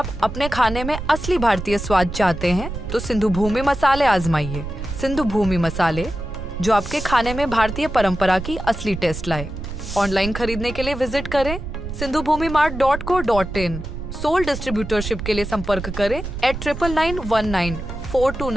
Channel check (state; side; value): noise; right; rumble, 8 dB below the sound